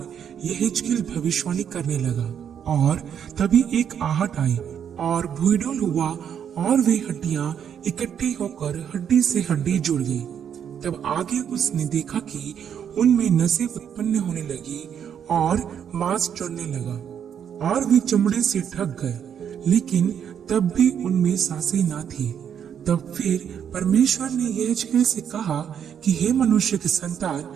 यहेजकेल भविष्यवाणी करने लगा और तभी एक आहट आई और भूइडोल हुआ और वे हड्डियां इकट्ठी होकर हड्डी से हड्डी जुड़ गई। तब आगे उसने देखा कि उनमें नसें उत्पन्न होने लगी और मांस चढ़ने लगा और वे चमड़े से ढक गए, लेकिन तब भी उनमें सांसें ना थी। तब फिर परमेश्वर ने यहेजकेल से कहा कि हे मनुष्य के संतान,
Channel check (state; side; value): quieter; left; 8.5 dB